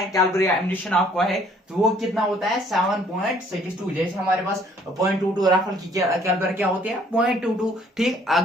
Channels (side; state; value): both; normal; correlation 0.60